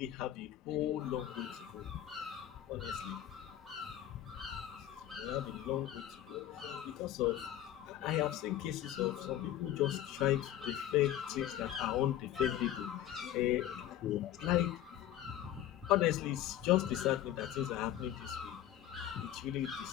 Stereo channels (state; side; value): quieter; right; 12.1 dB